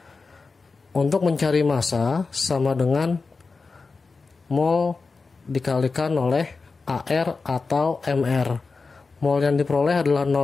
Untuk mencari massa sama dengan mol dikalikan oleh AR atau MR. Mol yang diperoleh adalah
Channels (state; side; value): quieter; right; 4.3 dB